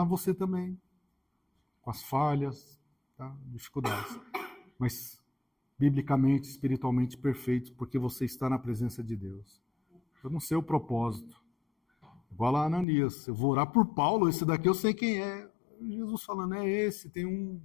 você também. Com as falhas, tá? Dificuldades. Mas biblicamente, espiritualmente perfeito, porque você está na presença de Deus. Eu não sei o propósito. Igual lá Ananias, eu vou orar por Paulo, esse daqui eu sei quem é. Jesus falando, é esse, tem um...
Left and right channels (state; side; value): drops out; right; at 12.9 s